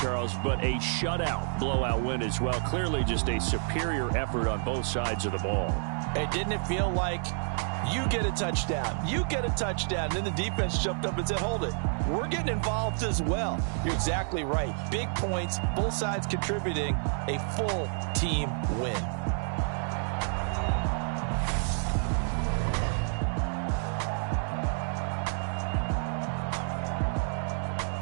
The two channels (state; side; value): silent; left; 58 dB below the other